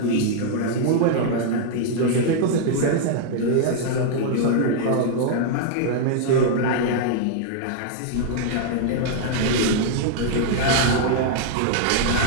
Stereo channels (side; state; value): both; different; correlation -0.01